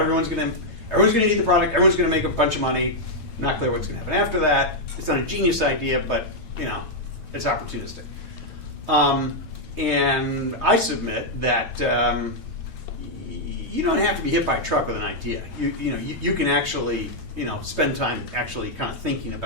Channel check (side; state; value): right; late; 8.9 ms